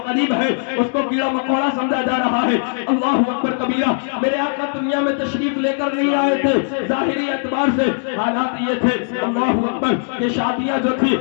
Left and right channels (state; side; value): silent; right; digital silence